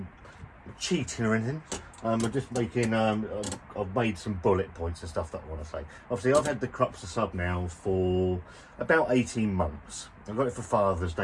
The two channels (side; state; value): both; identical; correlation 1.00